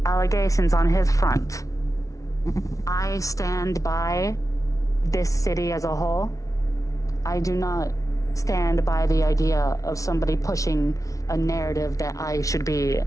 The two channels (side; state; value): right; late; 0.16 ms